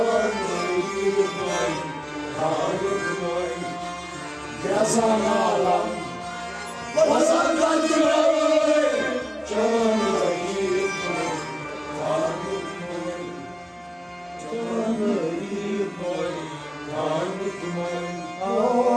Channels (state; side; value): identical; both; correlation 1.00